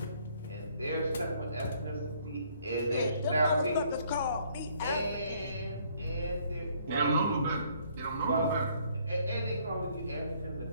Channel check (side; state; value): both; inverted; correlation -0.64